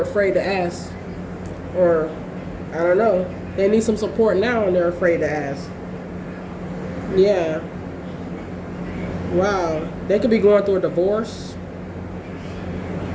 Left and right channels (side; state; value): both; identical; correlation 1.00